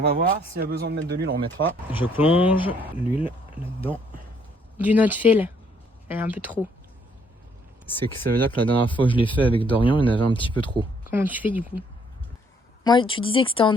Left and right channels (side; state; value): both; normal; correlation 0.66